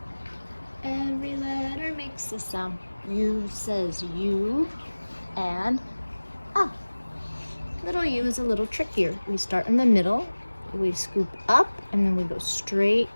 Every letter makes a sound. U says U, and Little U is a little trickier. We start in the middle, we scoop up, and then we go straight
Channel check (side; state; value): both; inverted; correlation -1.00